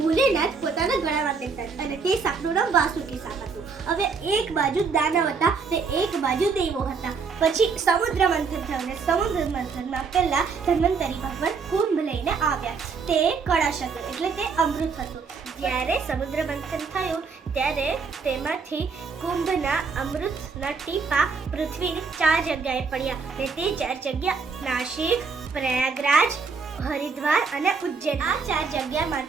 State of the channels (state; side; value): quieter; left; 5.1 dB